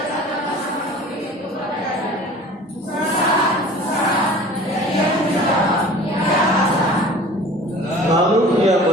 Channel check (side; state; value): both; normal; correlation 0.43